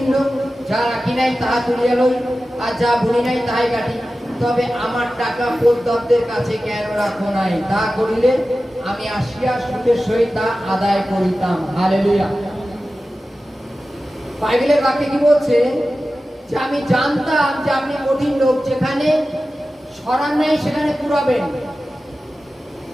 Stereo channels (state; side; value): normal; both; correlation 0.94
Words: লোক, যা রাখি নাই তাহা তুলিয়া লই, আর যা বুনি নাই তাহাই কাটি। তবে আমার টাকা পোদ্দারদের কাছে কেন রাখো নাই? তা করিলে আমি আসিয়া সুখের সহিত তা আদায় করিতাম। হালেলুয়া। বাইবেলের বাক্যে কি বলছে? যে আমি জানতাম যে আপনি কঠিন লোক, যেখানে সরান নাই সেখানে কুড়াবেন,